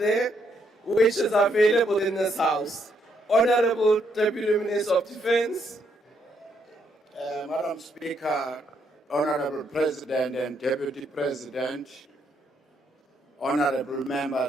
which is available in this house. Honorable Deputy Minister of Defense. Madam Speaker, Honorable President and Deputy President, honorable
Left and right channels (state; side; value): normal; both; correlation 0.74